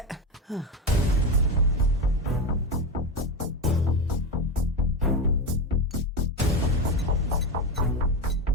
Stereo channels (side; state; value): both; normal; correlation 0.16